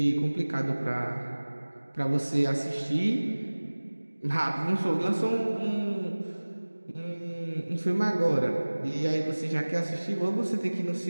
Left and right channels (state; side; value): inverted; both; correlation -1.00